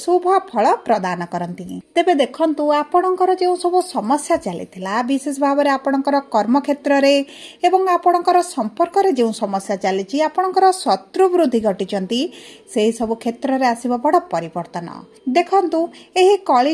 फल प्रदान करती। तेबे देखंतु आपणकर जो सब समस्या चलीथिला विशेष भाव में आपणकर कर्म क्षेत्र रे एवं आपणकर संपर्क रे जो समस्या चली आपणकर शत्रु वृद्धि घटिचंती से सब क्षेत्र रे आसीबो बड़ परिवर्तन। देखंतु एही कली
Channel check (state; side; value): identical; both; correlation 1.00